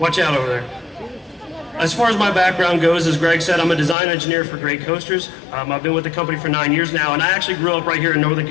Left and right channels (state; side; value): drops out; right; at 4.0 s